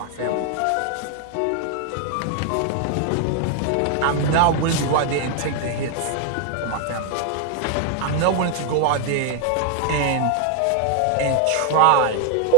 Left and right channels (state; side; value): different; both; correlation 0.00